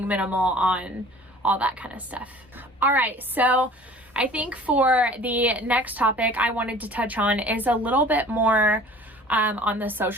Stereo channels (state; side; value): normal; both; correlation 0.47